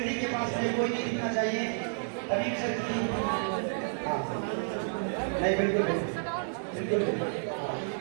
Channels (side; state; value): left; silent; digital silence